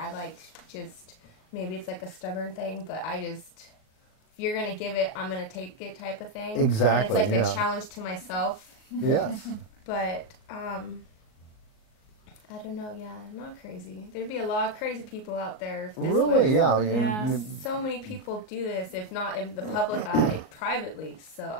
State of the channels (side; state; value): right; late; 38 ms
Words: like just, maybe it's like a stubborn thing, but if you're going to give it, I'm going to take it type of thing. Exactly, and it's like a challenge to myself. Yes. But, I don't know, I'm not crazy. There'd be a lot of crazy people out there. If this Really, was, yeah. So many people do this, if not in the public eye, privately. So